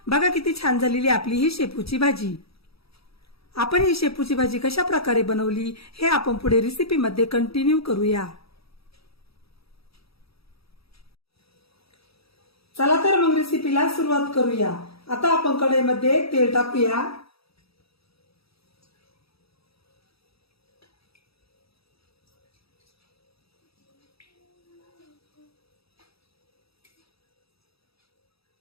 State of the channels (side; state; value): right; late; 0.77 ms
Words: बघा किती छान झालेली आपली ही शेपूची भाजी। आपण ही शेपूची भाजी कशा प्रकारे बनवली हे आपण पुढे रेसिपी मध्ये कंटिन्यू करूया। चला तर मग रेसिपीला सुरुवात करूया। आता आपण कढईमध्ये तेल टाकूया।